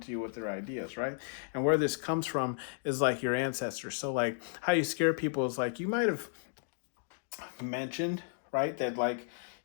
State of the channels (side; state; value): right; silent; digital silence